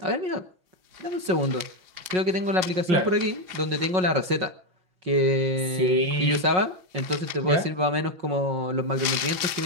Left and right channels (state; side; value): late; left; 5.5 ms